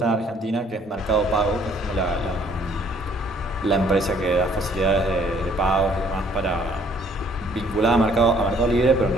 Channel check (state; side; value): normal; both; correlation 0.62